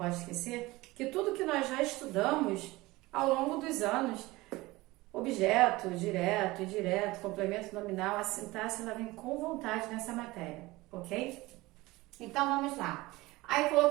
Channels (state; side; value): quieter; left; 20.4 dB